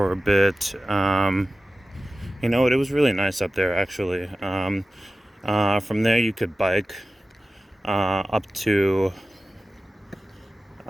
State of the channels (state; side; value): normal; both; correlation 0.95